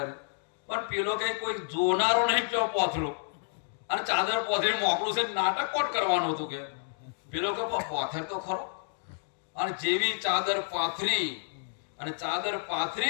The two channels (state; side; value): silent; right; digital silence